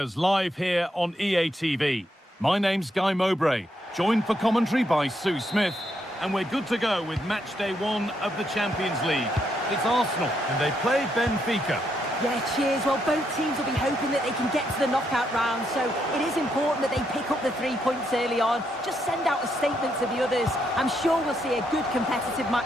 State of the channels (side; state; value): both; normal; correlation 0.78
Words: live here on EA TV. My name's Guy Mowbray, joined for commentary by Sue Smith, and we're good to go with match day 1 of the Champions League. It's Arsenal, and they play Benfica. Yeah, cheers. Well, both teams will be hoping that they can get to the knockout round, so it is important that they pick up the 3 points early on. Just send out a statement to the others. I'm sure we'll see a good competitive